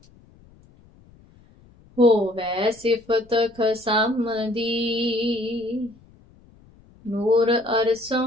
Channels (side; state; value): left; noise; rumble, 27 dB below the sound